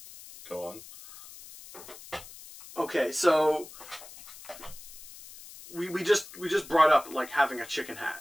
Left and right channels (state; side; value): noise; left; hiss, 17 dB below the sound